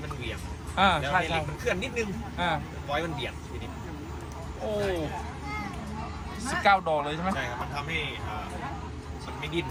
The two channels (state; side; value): identical; both; correlation 1.00